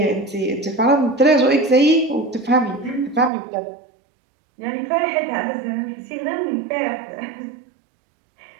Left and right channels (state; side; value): drops out; left; at 3.3 s